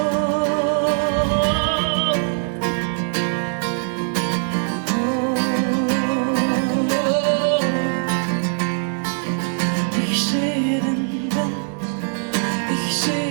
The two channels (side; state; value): left; silent; digital silence